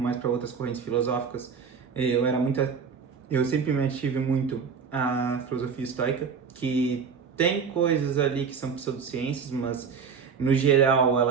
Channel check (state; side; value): quieter; left; 6.0 dB